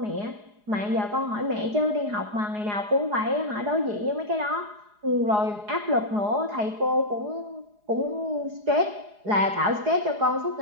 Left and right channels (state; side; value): late; left; 4.8 ms